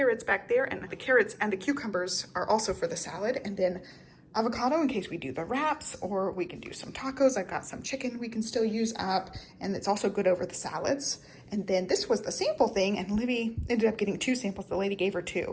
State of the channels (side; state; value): both; identical; correlation 1.00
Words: back there, and the carrots and the cucumbers are also for the salad, and then avocado in case we do the wraps, or we can do some tacos. I've got some chicken we can still use up, and it's also good over the salads. And then this was the sample thing, and Livy ended up getting 2 samples. The lady gave her